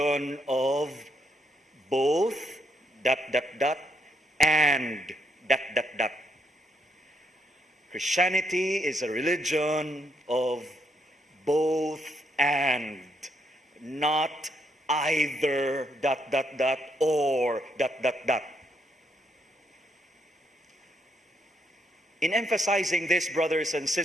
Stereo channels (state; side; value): normal; both; correlation 0.75